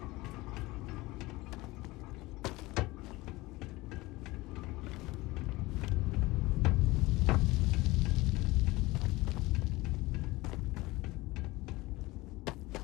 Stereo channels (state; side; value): quieter; right; 20.7 dB